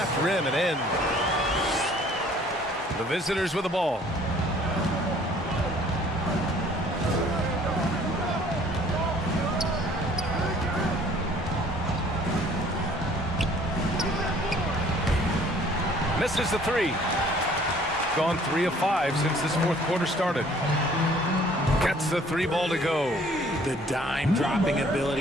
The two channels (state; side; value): normal; both; correlation 0.56